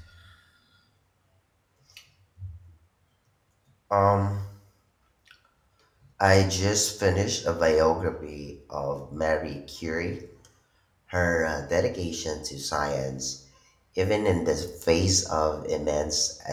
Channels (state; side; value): identical; both; correlation 1.00